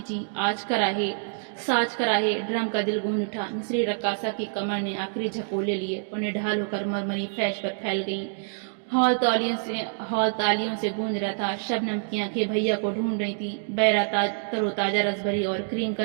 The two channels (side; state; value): left; silent; digital silence